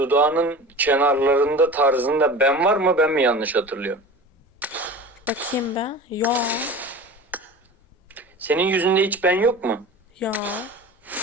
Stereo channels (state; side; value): normal; both; correlation 0.35